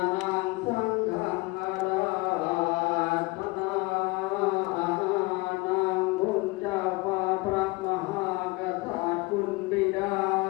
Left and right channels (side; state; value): right; quieter; 23.6 dB